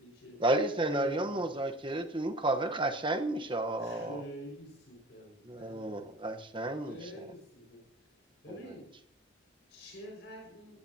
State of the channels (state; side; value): normal; both; correlation 0.42